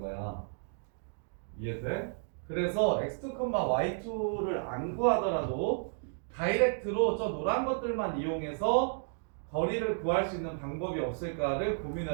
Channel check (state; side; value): silent; left; digital silence